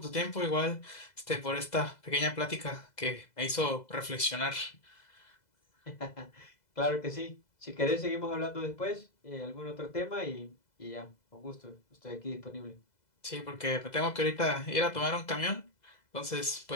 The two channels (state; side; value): late; right; 2.0 ms